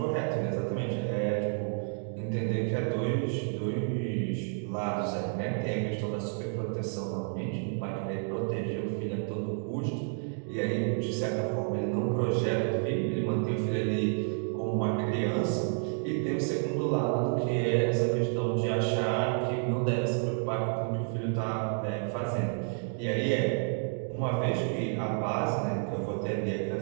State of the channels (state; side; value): silent; left; 58 dB below the other